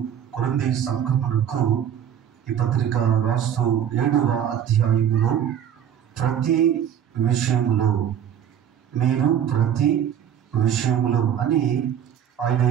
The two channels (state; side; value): quieter; left; 9.4 dB